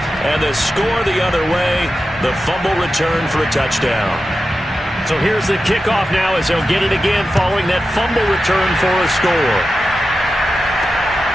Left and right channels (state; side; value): normal; both; correlation 0.92